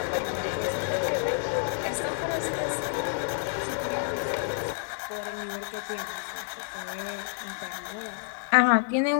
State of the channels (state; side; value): silent; right; 59 dB below the other